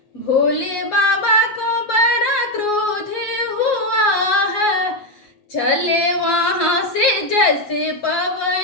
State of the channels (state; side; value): late; right; 7.6 ms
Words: भोले बाबा को बड़ा क्रोध हुआ है। चले वहाँ से जैसे